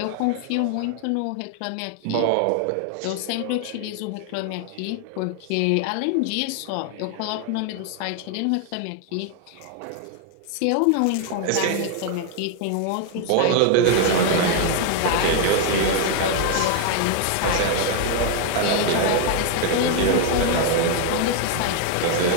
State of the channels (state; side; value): different; both; correlation 0.00